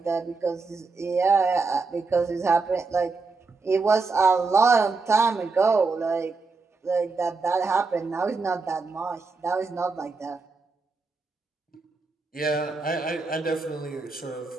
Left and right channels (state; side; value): quieter; left; 4.1 dB